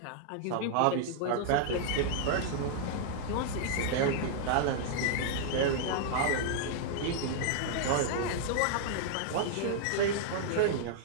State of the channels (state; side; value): different; both; correlation -0.01